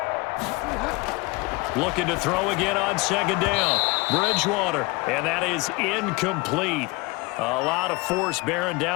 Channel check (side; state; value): right; quieter; 25.2 dB